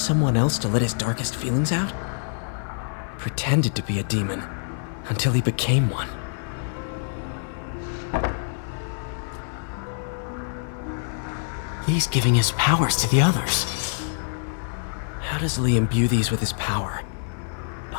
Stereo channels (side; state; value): right; silent; 56 dB below the other